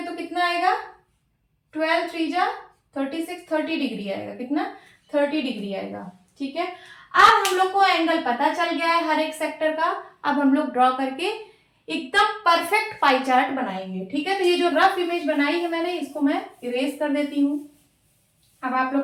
कितना आएगा 12 3 जा 36, 30 डिग्री आएगा। कितना 30 डिग्री आएगा। ठीक है, अब हम लोग को एंगल पता चल गया है हर एक सेक्टर का। अब हम लोग ड्रॉ करके एकदम परफेक्ट पाई चार्ट बनाएंगे। ठीक है, तो ये जो रफ इमेज बनाई है मैंने, इसको मैं इरेज कर देती हूँ। अब आप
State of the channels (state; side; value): identical; both; correlation 1.00